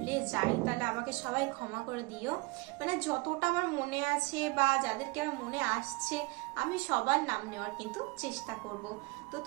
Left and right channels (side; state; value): left; quieter; 25.5 dB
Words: যাই তাহলে আমাকে সবাই ক্ষমা করে দিও। মানে যতটা আমার মনে আছে বা যাদেরকে আমার মনে আসছে আমি সবার নাম নেওয়ার কিন্তু চেষ্টা করব। তো